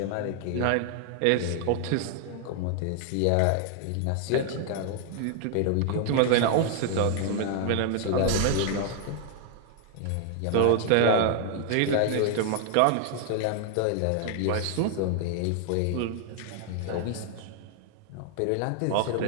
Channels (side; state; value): both; different; correlation 0.00